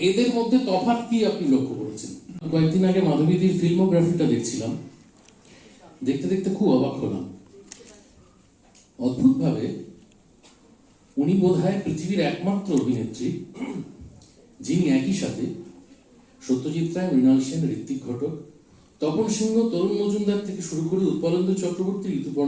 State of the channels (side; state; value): both; identical; correlation 1.00